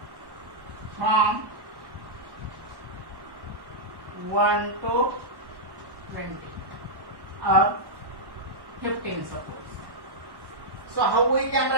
from 1 to 20 or 15 suppose. So how we can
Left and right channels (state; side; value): late; left; 1.1 ms